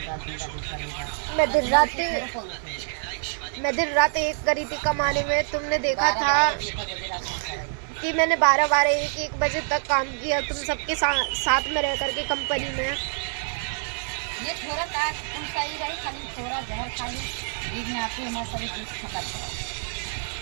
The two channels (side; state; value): left; silent; 61 dB below the other